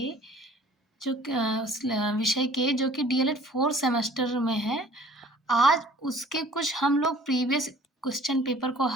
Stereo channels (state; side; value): normal; both; correlation 0.52